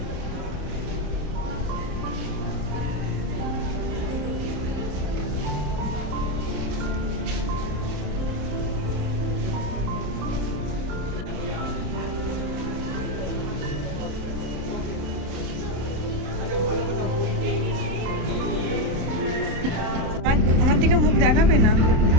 আমার দিকে মুখ দেখাবে না,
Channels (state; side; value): late; left; 27 ms